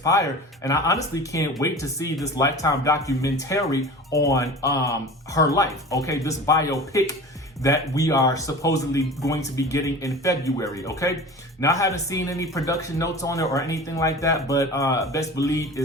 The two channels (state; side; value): normal; both; correlation 0.37